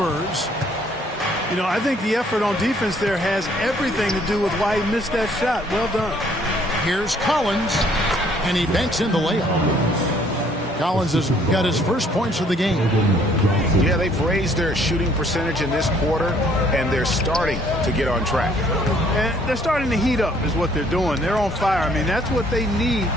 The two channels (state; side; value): normal; both; correlation 0.62